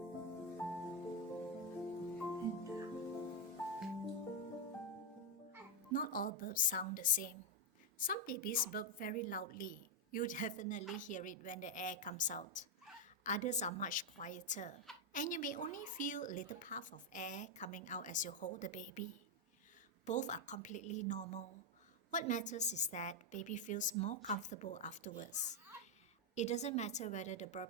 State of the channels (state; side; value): normal; both; correlation 0.01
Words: And Not all burps sound the same. Some babies burp very loudly. You definitely hear it when the air comes out. Others are much quieter, and you may only feel a little puff of air coming out as you hold the baby. Both are completely normal. What matters is that baby feels more comfortable afterwards. It doesn't matter whether the